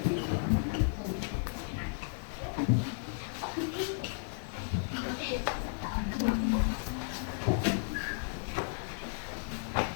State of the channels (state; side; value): silent; right; digital silence